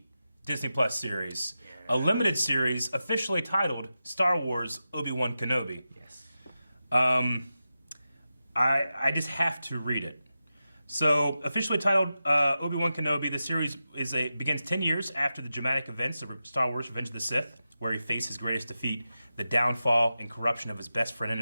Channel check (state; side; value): inverted; both; correlation -0.91